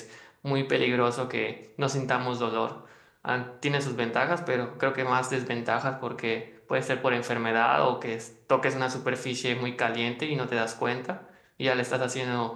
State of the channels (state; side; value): identical; both; correlation 1.00